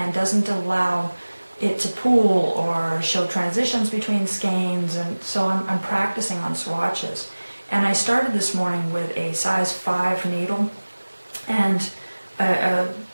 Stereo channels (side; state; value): both; inverted; correlation -1.00